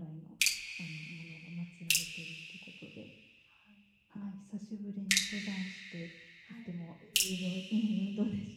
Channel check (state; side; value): identical; both; correlation 1.00